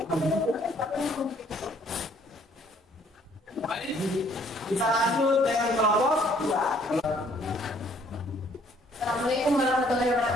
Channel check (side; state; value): both; normal; correlation 0.62